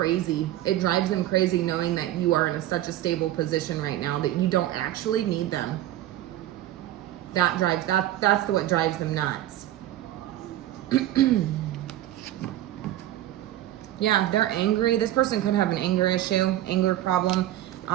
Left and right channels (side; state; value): left; quieter; 13.6 dB